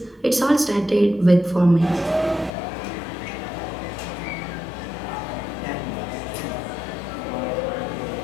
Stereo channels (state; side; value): drops out; right; at 2.5 s